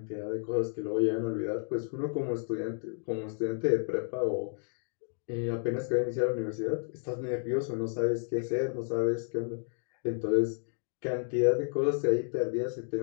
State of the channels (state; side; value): silent; right; 57 dB below the other